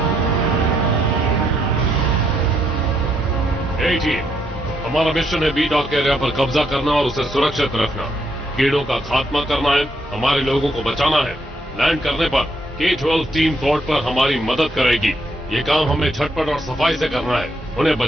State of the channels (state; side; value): normal; both; correlation 0.75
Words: हमारा मिशन है बी डॉक एरिया पर कब्जा करना और उसे सुरक्षित रखना। कीड़ों का खात्मा करना है, हमारे लोगों को बचाना है। लैंड करने पर K-12 टीम पोर्ट पर हमारी मदद करेगी। ये काम हमें झटपट और सफाई से करना है। उन्हें